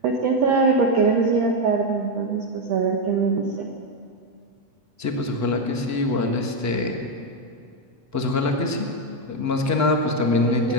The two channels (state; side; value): late; left; 8.1 ms